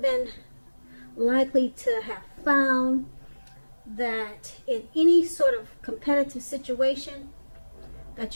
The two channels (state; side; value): inverted; both; correlation -1.00